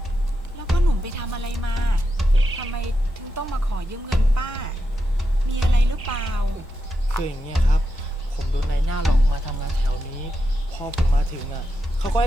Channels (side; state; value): both; normal; correlation 0.87